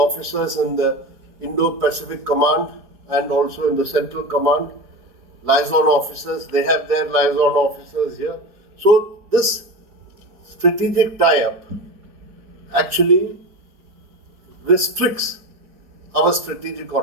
in the Indo-Pacific Command and also in the Central Command. Liaison officers, they have their liaison officers here. So this strategic tie-up actually restricts our strategic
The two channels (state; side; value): late; left; 4.7 ms